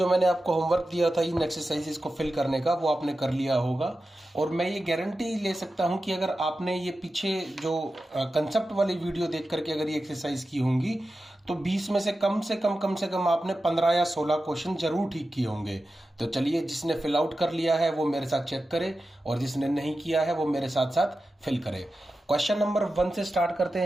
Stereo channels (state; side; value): normal; both; correlation 0.93